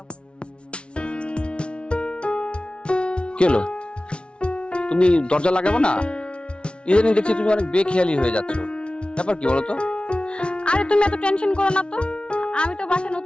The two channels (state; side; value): late; right; 0.058 ms